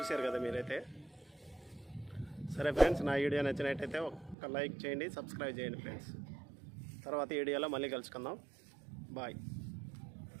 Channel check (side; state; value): left; drops out; at 4.4 s